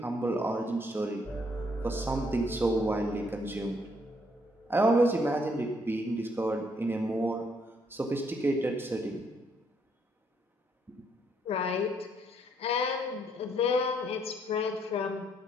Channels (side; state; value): both; normal; correlation 0.71